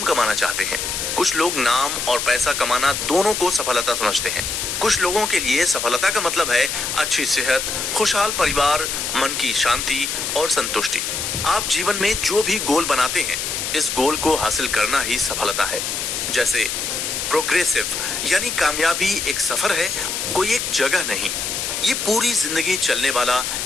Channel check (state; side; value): noise; left; hiss, 2 dB below the sound